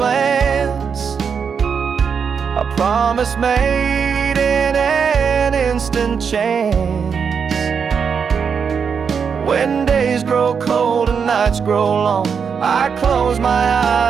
a promise made in an instant chance. When days grow cold and nights grow long, I close my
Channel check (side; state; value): left; quieter; 6.4 dB